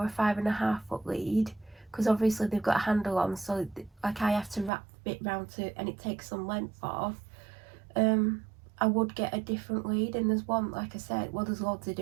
a 5.5 foot lead, because obviously they've got a handle on, so like I have to wrap bit round to, and it takes some length off, I would get a different lead. And there's one, like I said, well, there's loads to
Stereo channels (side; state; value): left; drops out; at 4.7 s